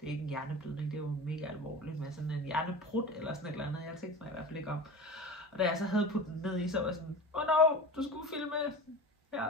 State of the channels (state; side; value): normal; both; correlation 0.32